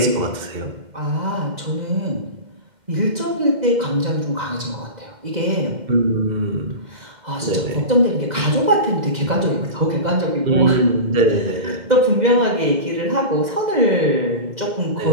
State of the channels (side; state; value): left; late; 2.1 ms